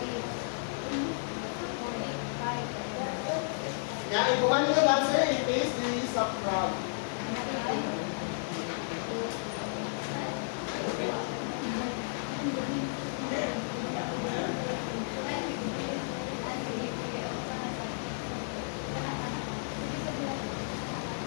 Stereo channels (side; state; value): right; silent; digital silence